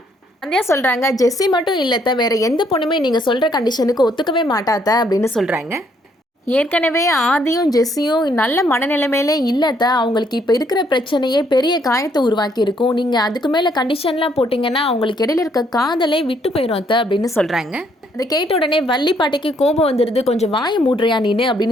சந்தியா சொல்கிறாங்க, ஜெஸ்ஸி மட்டும் இல்லத்த, வேறு எந்த பொண்ணுமே நீங்கள் சொல்கிற கண்டிஷனுக்கு ஒத்துக்கவே மாட்டாத்த அப்படின்னு சொல்கிறாங்க. ஏற்கனவே ஆதியும் ஜெஸ்ஸியும் நல்ல மனநிலைமையிலே இல்லத்த, அவங்களுக்கு இப்போ இருக்கிற பிரச்சனையே பெரிய காயத்தை உருவாக்கி இருக்கும். நீங்கள் அதுக்கு மேலே கண்டிஷன்லாம் போட்டிங்கன்னா அவங்களுக்கு இடையில இருக்க காதலே விட்டு போயிடும் அத்த அப்படின்னு சொல்கிறாங்க. அதை கேட்ட உடனே வள்ளி பாட்டிக்கு கோபம் வந்துடுது. கொஞ்சம் வாயை மூடுறியா நீனு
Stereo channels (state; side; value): normal; both; correlation 0.69